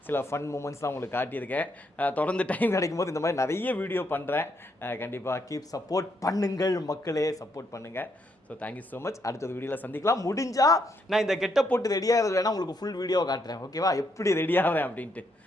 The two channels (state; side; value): normal; both; correlation 0.76